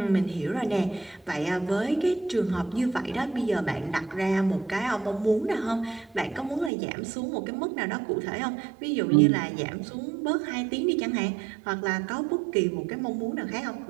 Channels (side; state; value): left; drops out; at 6.7 s